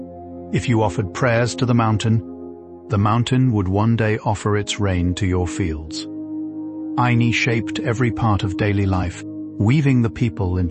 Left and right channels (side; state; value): both; identical; correlation 1.00